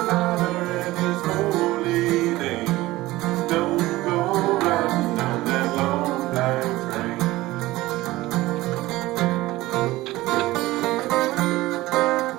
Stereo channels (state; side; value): quieter; left; 18.2 dB